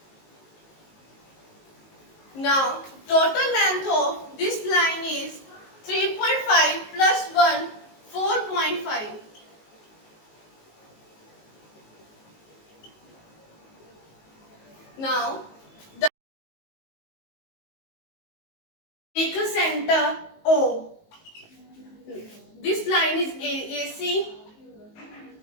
Now total length of this line is 3.5 plus 1 4.5. Now take a center O. This line is AC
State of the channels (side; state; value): right; late; 19 ms